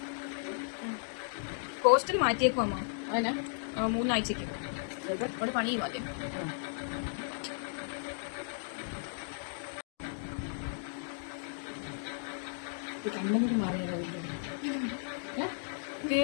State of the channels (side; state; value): right; silent; digital silence